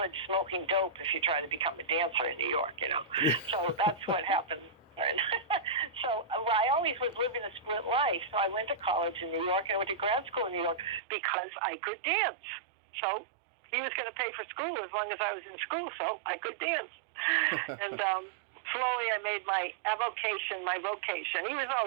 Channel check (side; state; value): left; drops out; at 11.0 s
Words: smoking dope if you try to become a dancer in New York, So that's what happened. So I always was living a split life. So I went to college in New York and I went to grad school in New York because I could dance. So he was going to pay for school as long as I was in school, so I could dance. And slowly I made my avocation my vocation. He was